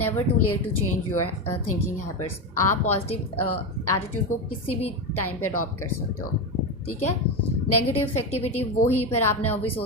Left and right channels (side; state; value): both; normal; correlation 0.15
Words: too late to change your thinking habits. आप पॉजिटिव एटीट्यूड को किसी भी टाइम पे अडॉप्ट कर सकते हो. ठीक है. नेगेटिव इफेक्टिविटी वही फिर आपने ऑब्वियस